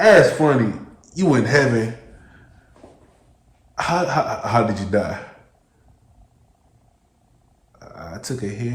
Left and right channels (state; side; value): identical; both; correlation 1.00